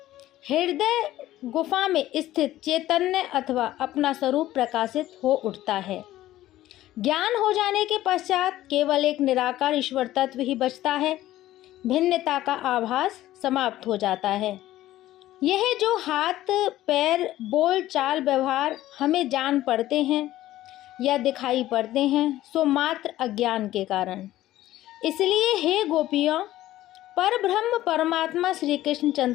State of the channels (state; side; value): quieter; right; 14.7 dB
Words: हृदय गुफा में स्थित चैतन्य अथवा अपना स्वरूप प्रकाशित हो उठता है। ज्ञान हो जाने के पश्चात केवल एक निराकार ईश्वर तत्व ही बचता है। भिन्नता का आभास समाप्त हो जाता है। यह जो हाथ पैर बोल चाल व्यवहार हमें जान पड़ते हैं या दिखाई पड़ते हैं सो मात्र अज्ञान के कारण। इसलिए हे गोपियों, परब्रह्म परमात्मा श्री कृष्ण